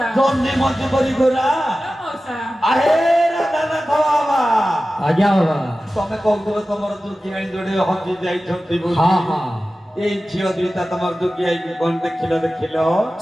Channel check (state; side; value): normal; both; correlation 0.95